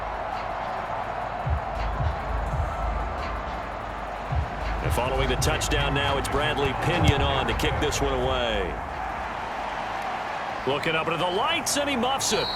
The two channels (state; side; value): identical; both; correlation 1.00